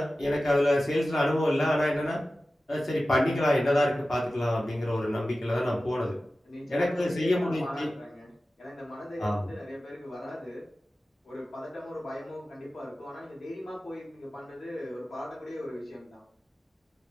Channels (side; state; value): both; normal; correlation 0.95